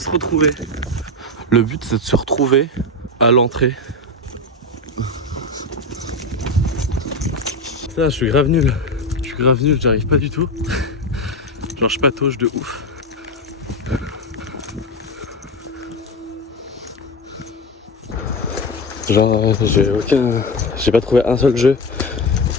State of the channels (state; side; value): normal; both; correlation 0.18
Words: retrouver. Le but c'est de se retrouver à l'entrée. Ça, je suis grave nul. J'y arrive pas du tout. Genre je patauge de ouf. Genre j'ai pas trouvé un seul jeu.